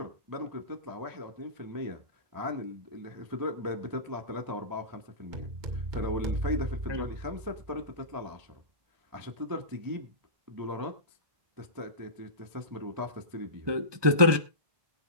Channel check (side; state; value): left; late; 1.2 ms